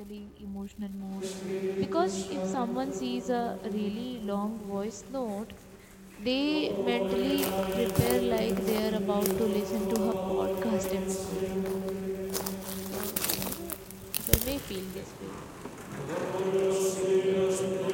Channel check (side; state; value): both; identical; correlation 1.00